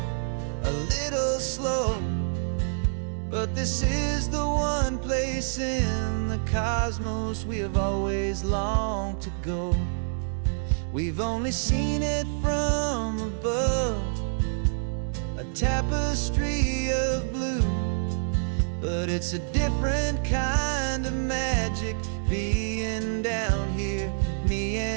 a little slow, but this is the one place in the cosmos we have always longed to go. We've only seen it from above, a tapestry of blue, but it's a different kind of magic being down here, me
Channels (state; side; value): silent; left; digital silence